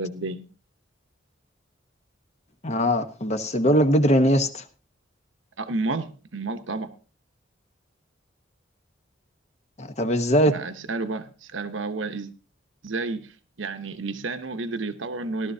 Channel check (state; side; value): normal; both; correlation 0.45